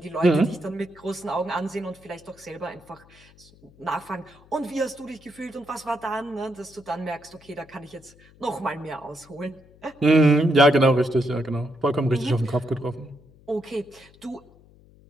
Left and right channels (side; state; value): left; noise; hum, 26 dB below the sound